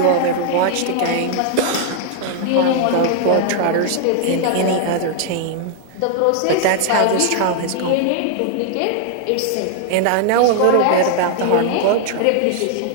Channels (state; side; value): different; both; correlation 0.00